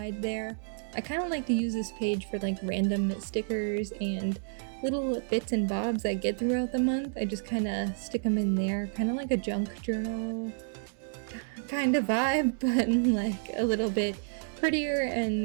there. I kind of like to use this page for like random stickers and little bits and bobs I get throughout the month. I just kind of stick them in there, kind of like a junk journal kind of vibe, but like a little bit prettier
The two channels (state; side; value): silent; left; 58 dB below the other